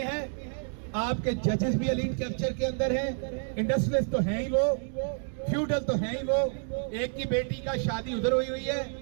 ہے, آپ کے ججز بھی ایلیٹ کیپچر کے اندر ہیں, انڈسٹریلسٹ تو ہیں ہی وہ, فیوڈل تو ہیں ہی وہ. ایک کی بیٹی کا شادی ادھر ہوئی ہوئی ہے,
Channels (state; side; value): silent; left; 58 dB below the other